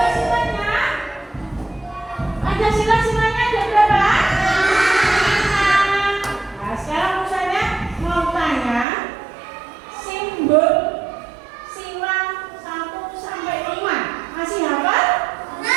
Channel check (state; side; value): drops out; left; at 8.8 s